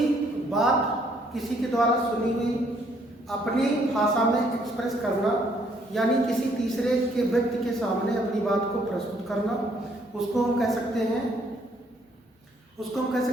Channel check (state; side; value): normal; both; correlation 0.67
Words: बात किसी के द्वारा सुनी हुई अपनी भाषा में एक्सप्रेस करना यानी किसी तीसरे के व्यक्ति के सामने अपनी बात को प्रस्तुत करना, उसको हम कह सकते